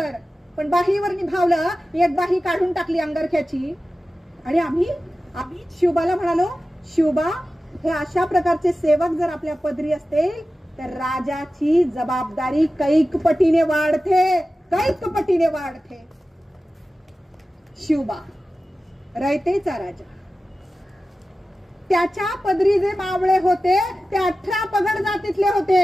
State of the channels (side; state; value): both; normal; correlation 0.94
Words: पण बाहीवर निभावलं. एक बाही काढून टाकली अंगरख्याची. आणि आम्ही शिवबाला म्हणालो, शिवबा, हे अशा प्रकारचे सेवक जर आपल्या पदरी असतील तर राजाची जबाबदारी कैक पटीने वाढते. शिवबा रयतेचा राजा, त्याच्या पदरी जे मावळे होते ते 18 पगड जातीतले